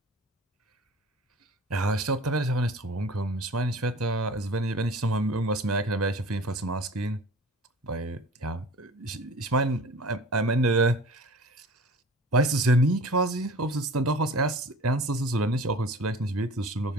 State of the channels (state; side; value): normal; both; correlation 0.42